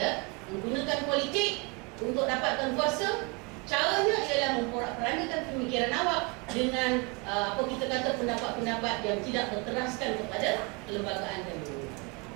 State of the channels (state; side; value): quieter; left; 29.4 dB